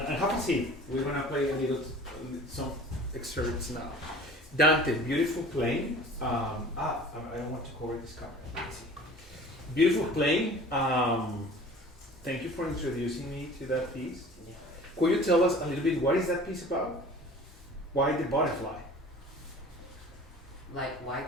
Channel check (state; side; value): normal; both; correlation 0.44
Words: a seat. We're gonna play some excerpts now. Dante, beautiful playing. I don't want to cover this camera. Let's see. Beautiful playing. Thank you for introducing me to that piece. Yeah. Could you tell us a little bit what is that piece about? Why the butterfly? Like